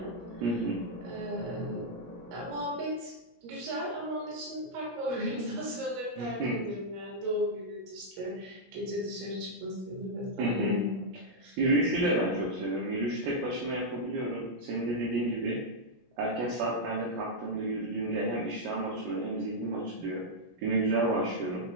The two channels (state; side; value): late; left; 17 ms